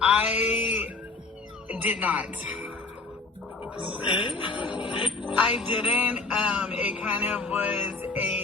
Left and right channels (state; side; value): quieter; right; 3.9 dB